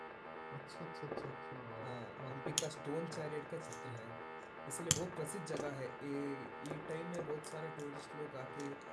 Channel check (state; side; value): identical; both; correlation 1.00